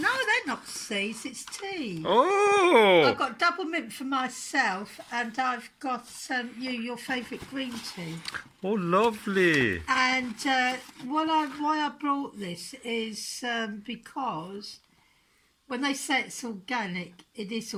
they're not seeds. It's tea. Oh! I've got double mint for myself, and I've got your favourite green tea. Oh, lovely. And why I brought this is because when they say it's organic, it is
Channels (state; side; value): identical; both; correlation 1.00